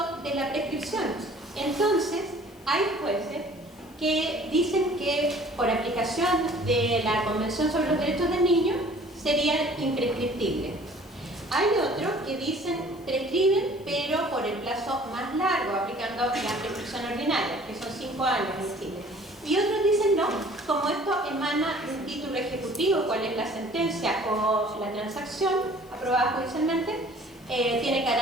de la prescripción. Entonces, hay jueces que dicen que por aplicación de la Convención sobre los Derechos del Niño serían imprescriptibles. Hay otros que dicen prescriben, pero por el plazo más largo, aplicando la prescripción ordinaria, que son 5 años en Chile. Y otros dicen no, como esto emana de un título ejecutivo, cuál es la sentencia o la transacción aprobada judicialmente, tiene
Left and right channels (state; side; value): noise; left; hiss, 28 dB below the sound